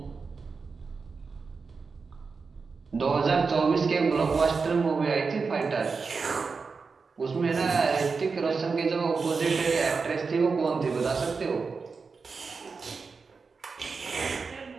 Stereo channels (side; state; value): left; quieter; 4.8 dB